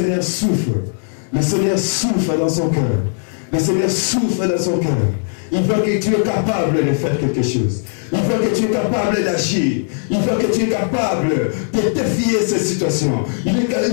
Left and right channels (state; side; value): silent; right; digital silence